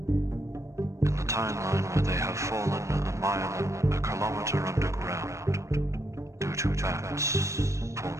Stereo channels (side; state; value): left; late; 0.15 ms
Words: In the timeline where they have fallen a mile and a kilometer underground due to bats